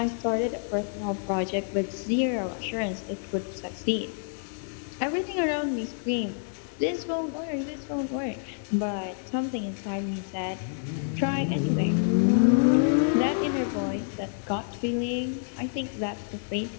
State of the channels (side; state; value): right; silent; digital silence